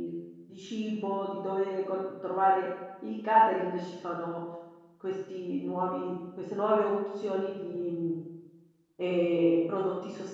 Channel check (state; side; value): identical; both; correlation 1.00